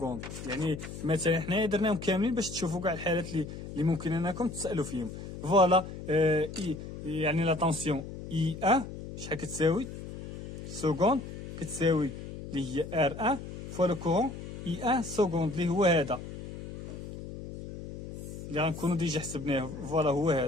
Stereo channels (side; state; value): left; noise; hum, 10 dB below the sound